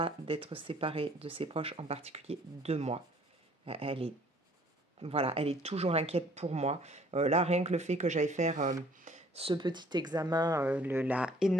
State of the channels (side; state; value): both; normal; correlation 0.57